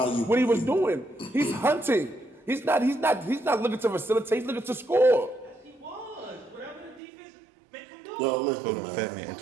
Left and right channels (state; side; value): drops out; left; at 7.0 s